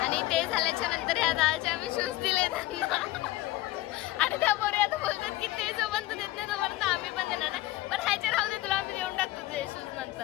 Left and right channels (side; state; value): right; quieter; 17.6 dB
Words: आणि ते झाल्याच्या नंतर ह्या दाळचे आम्ही शूज दिले त्यांना. आणि त्या पोरी आता बोलतात की ते जोपर्यंत देत नाही तोपर्यंत आम्ही पण देणार नाही. पण ह्याचे राहू दे, तुला आम्ही देऊन टाकतो तुझे शूज